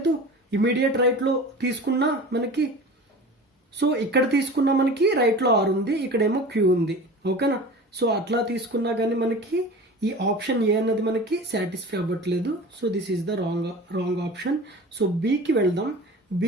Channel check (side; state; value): both; normal; correlation 0.37